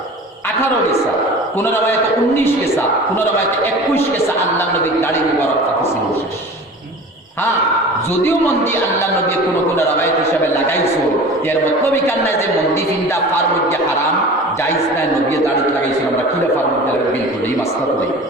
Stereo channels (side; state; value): both; normal; correlation 0.38